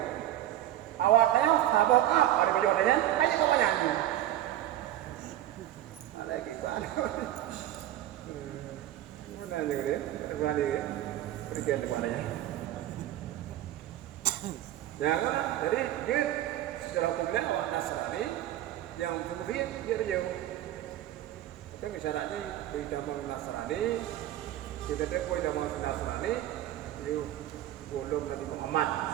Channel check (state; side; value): quieter; left; 13.2 dB